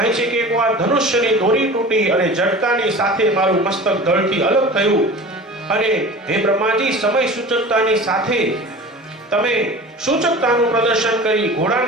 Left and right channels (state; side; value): normal; both; correlation 0.38